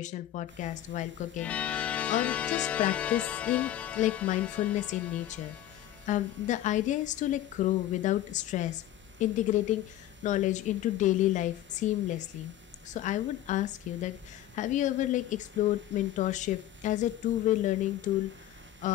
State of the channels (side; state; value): right; quieter; 13.1 dB